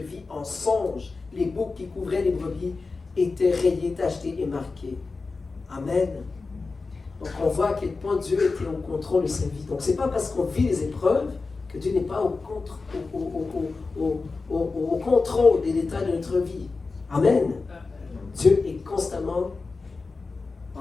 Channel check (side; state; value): right; quieter; 4.0 dB